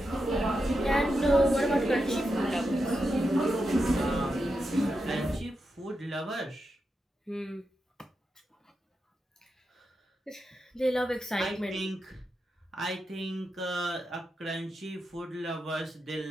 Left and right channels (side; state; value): both; normal; correlation 0.87